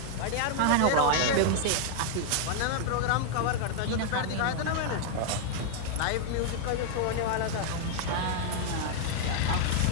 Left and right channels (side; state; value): both; different; correlation -0.01